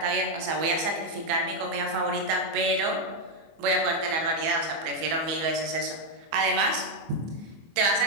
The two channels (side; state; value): left; late; 24 ms